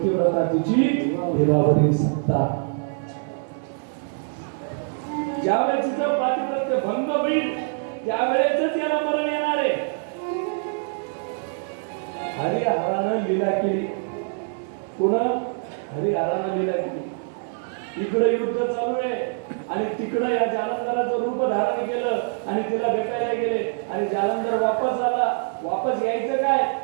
तिची देवावरील सत्ता. ज्यावेळेस तिचं पातिव्रत्य भंग होईल त्यावेळेसच याला मरण येणार आहे. हरिहरानं लीला केली. कोण? हरिहरानं लीला केली. इकडे युद्ध चालू आहे आणि तिकडे या जालंधराचं रूप धारण केलं आणि तिला भेटायला गेले आणि जालंधर वापस आला. वापस यायचं काय?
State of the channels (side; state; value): left; silent; digital silence